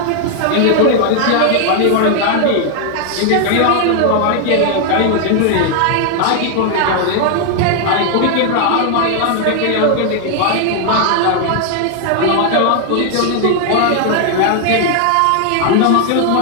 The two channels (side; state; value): both; different; correlation 0.00